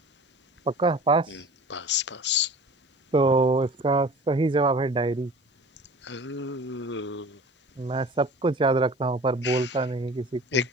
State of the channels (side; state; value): both; normal; correlation 0.42